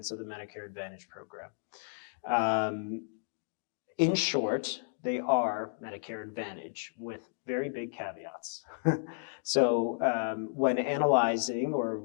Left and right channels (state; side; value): silent; right; digital silence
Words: of the Medicare Advantage program. In short, they are Medicare Advantage with very big caveats. So when analyzing or